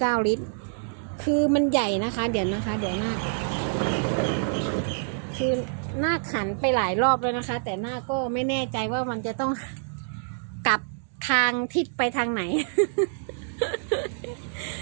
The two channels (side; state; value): left; silent; digital silence